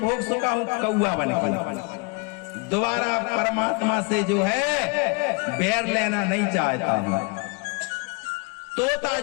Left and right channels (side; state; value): right; quieter; 30.9 dB